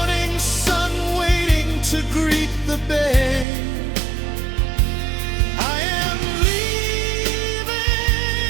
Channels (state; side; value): drops out; left; at 3.5 s